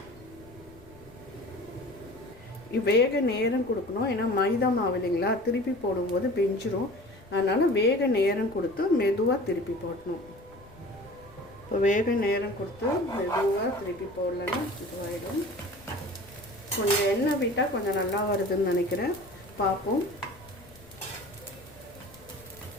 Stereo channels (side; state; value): left; noise; rumble, 23 dB below the sound